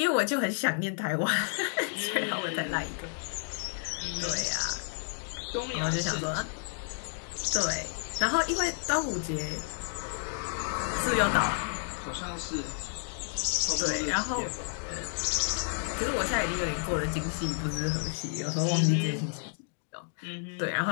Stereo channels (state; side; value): silent; right; digital silence